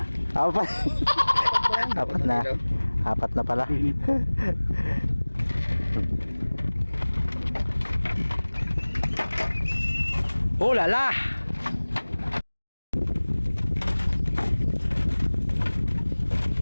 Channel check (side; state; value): both; inverted; correlation -1.00